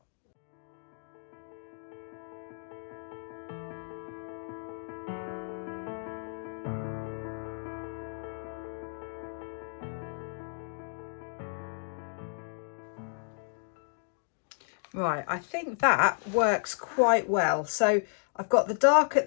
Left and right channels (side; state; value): right; silent; digital silence